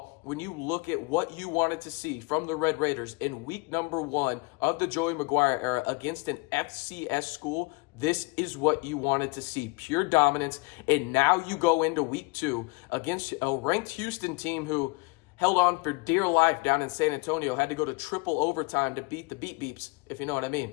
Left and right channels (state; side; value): quieter; right; 26.3 dB